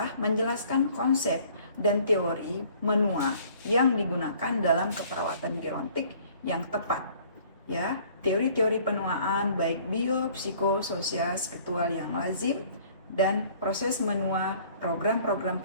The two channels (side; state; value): both; inverted; correlation -0.55